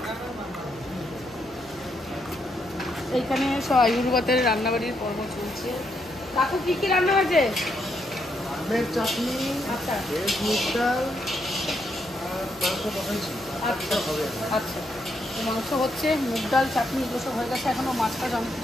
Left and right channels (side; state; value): left; noise; hum, 26 dB below the sound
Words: এইখানে সব আইবুড়ো ভাতের রান্নাবাড়ির পর্ব চলছে। কাকু কি কি রান্না হয়েছে? আমের চাটনি, আচ্ছা ভেজ মুগ ডাল আর মাংস বসাইছি। আচ্ছা আচ্ছা, তো মাংস হচ্ছে, মুগ ডাল, চাটনি এগুলো সব হয়ে গেছে। এখনও মাছটা অনেক